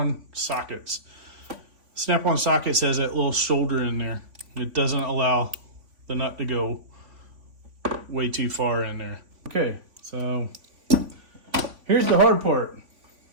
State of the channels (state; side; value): late; left; 3.5 ms